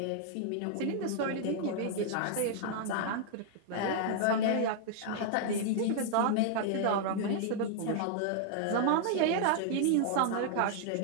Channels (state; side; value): different; both; correlation -0.01